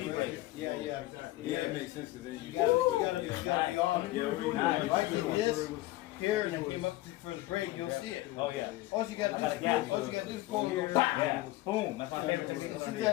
Yeah, Yeah, it makes sense because then you gotta be on them. If I do this here and I came up for the break, you'll see it. Oh yeah. All you gotta do is pull and go, Yeah. Boom. That's my favorite technique. see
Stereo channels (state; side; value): quieter; right; 17.7 dB